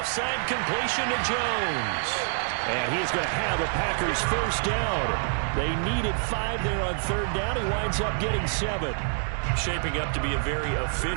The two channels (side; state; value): left; silent; 60 dB below the other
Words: side completion to Jones. And he is going to have a Packers first down. They needed 5 there on 3rd down. He winds up getting 7. Shaping up to be a very